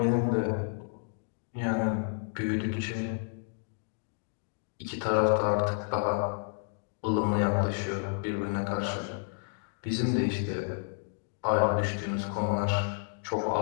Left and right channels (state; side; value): silent; right; digital silence